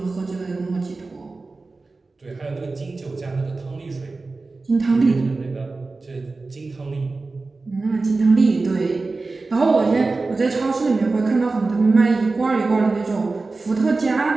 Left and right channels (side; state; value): left; quieter; 3.7 dB